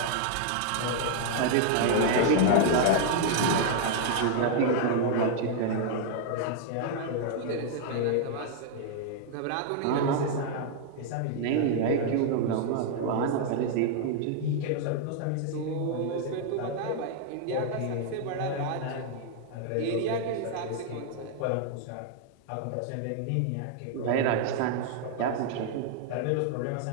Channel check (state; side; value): different; both; correlation 0.00